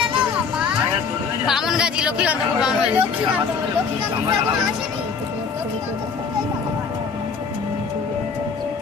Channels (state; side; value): quieter; right; 5.5 dB